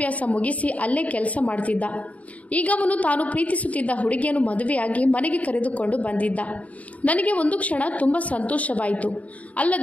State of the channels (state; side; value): late; right; 0.069 ms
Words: ಮುಗಿಸಿ ಅಲ್ಲೇ ಕೆಲಸ ಮಾಡ್ತಿದ್ದ. ಈಗ ಅವನು ತಾನು ಪ್ರೀತಿಸುತ್ತಿದ್ದ ಹುಡುಗಿಯನ್ನು ಮದುವೆಯಾಗಿ ಮನೆಗೆ ಕರೆದುಕೊಂಡು ಬಂದಿದ್ದ. ನನಗೆ ಒಂದು ಕ್ಷಣ ತುಂಬ ಸಂತೋಷವಾಯಿತು,